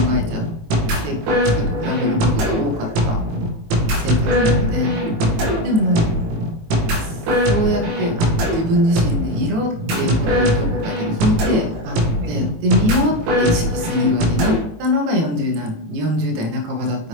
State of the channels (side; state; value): left; late; 18 ms